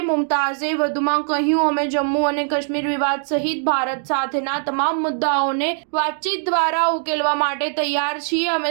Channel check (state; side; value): silent; left; digital silence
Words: મુમતાઝે વધુમાં કહ્યું, અમે જમ્મુ અને કાશ્મીર વિવાદ સહિત ભારત સાથેના તમામ મુદ્દાઓને વાતચીત દ્વારા ઉકેલવા માટે તૈયાર છીએ. અમે